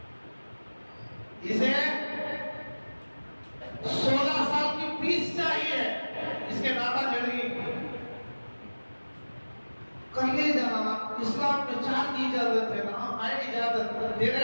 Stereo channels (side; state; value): both; inverted; correlation -1.00